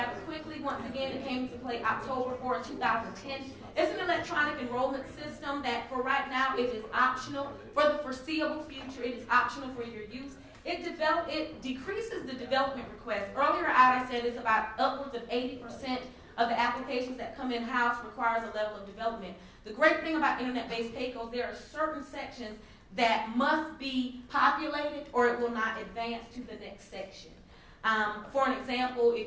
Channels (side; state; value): both; identical; correlation 1.00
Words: quickly. Once again, it came into play October 4, 2010. It's an electronic enrollment system that for right now it is optional. For the foreseeable future, it is optional for your use. It decreases the development request. Earlier I said it's about upwards of 80% of the applications that come in-house requires a level of development. The great thing about internet-based pay-goals, there are certain sections that must be populated or it will not advance to the next section. For an example,